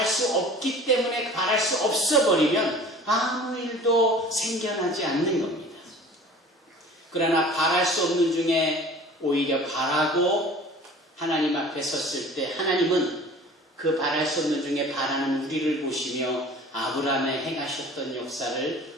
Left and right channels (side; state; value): both; normal; correlation 0.44